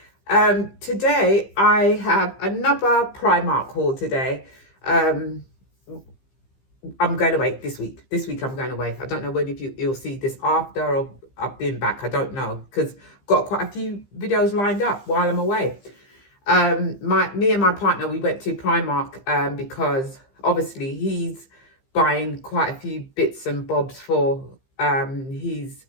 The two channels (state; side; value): late; right; 15 ms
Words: Today I have another Primark haul today. Um, I'm going away this week. This week I'm going away. I don't know when if you'll see this after or I've been back. I don't know because I've got quite a few videos lined up while I'm away. Me and my partner, we went to Primark because obviously he's buying quite a few bits and bobs for his